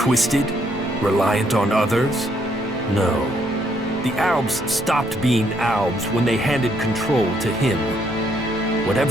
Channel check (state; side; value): normal; both; correlation 0.71